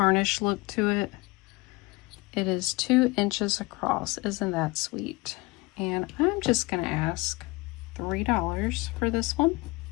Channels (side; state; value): right; quieter; 24.1 dB